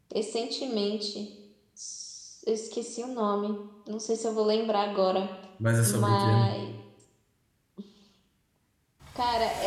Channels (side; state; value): both; identical; correlation 1.00